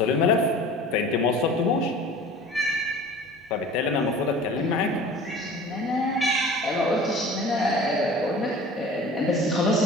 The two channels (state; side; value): normal; both; correlation 0.41